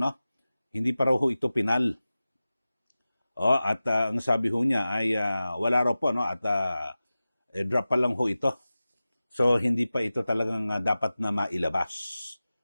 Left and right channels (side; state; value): both; inverted; correlation -0.96